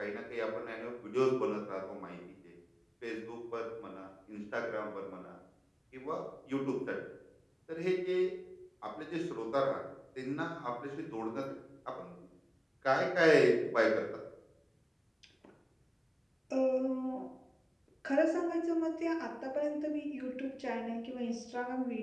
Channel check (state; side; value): identical; both; correlation 1.00